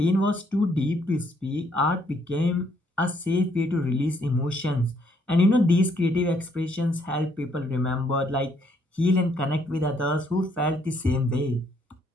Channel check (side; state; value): both; normal; correlation 0.69